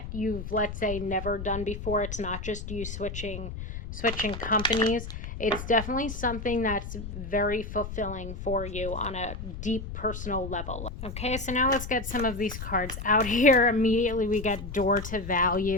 you've, let's say, never done before, it's not just you switching companies. It's definitely something that's very fulfilling for you on a deep personal level. Okay, so now let's get some of these cards out here. Immediately we get door to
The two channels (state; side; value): noise; left; rumble, 8 dB below the sound